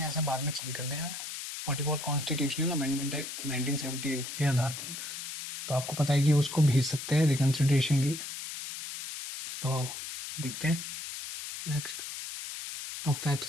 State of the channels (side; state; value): left; noise; hiss, 8 dB below the sound